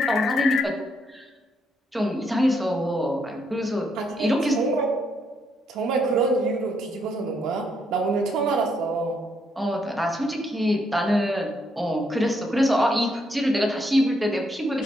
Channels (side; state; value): both; normal; correlation 0.75